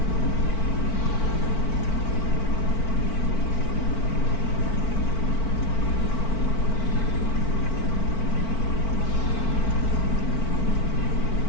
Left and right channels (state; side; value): late; right; 4.5 ms